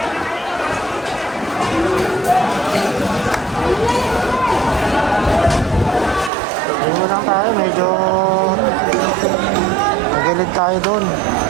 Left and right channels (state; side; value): drops out; left; at 6.3 s